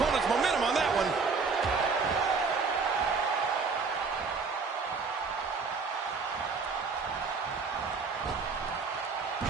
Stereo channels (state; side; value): quieter; left; 4.8 dB